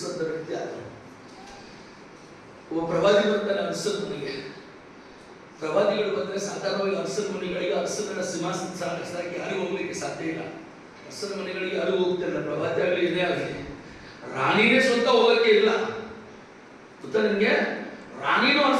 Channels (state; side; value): identical; both; correlation 1.00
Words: ವ್ಯಕ್ತಿ ಆತ. ಒಬ್ಬ ಪ್ರವಾದಿ ಬರ್ತಾನೆ ಅರಸನ ಮನೆಗೆ. ಪ್ರವಾದಿಗಳು ಬಂದ್ರೆ ಸಾಧಾರಣವಾಗಿ ಅರಸನ ಮನೆಗಳಿಗೆ ಅರಸನ ಸಿಂಹಾಸನ ಸಾಗಿಸಕ್ಕೆ ಯಾರು ಹೋಗ್ಲಿಕ್ಕೆ ಸಾಧ್ಯ ಇಲ್ಲ. ಅರಸನ ಮನೆಗಳಿಗೆ ಯಾರು ಹೋಗ್ತಿಲ್ಲ, ಪ್ರವಾದಿ ಆಗಲಿ ಇದೇ ಆಗಲಿ. ರಾಣಿನೇ ಸ್ವಂತ ಹೋಗಕ್ಕೆ ಇಲ್ಲ. ಗೊತ್ತಾ ನಿಮ್ಗೆ? ರಾಣಿನೂ